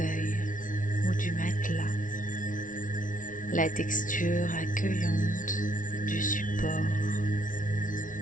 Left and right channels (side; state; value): right; late; 0.38 ms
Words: ou du matelas, la texture accueillante du support.